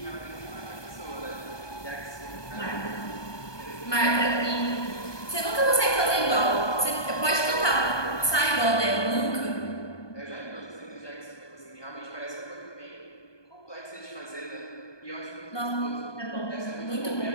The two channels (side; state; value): right; late; 1.2 ms